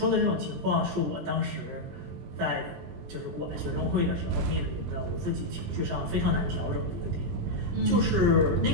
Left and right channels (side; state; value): left; late; 20 ms